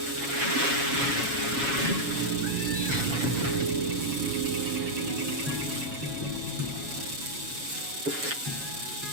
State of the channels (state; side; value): late; left; 7.2 ms